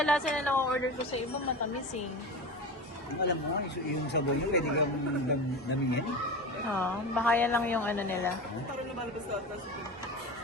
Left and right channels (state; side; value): normal; both; correlation 0.28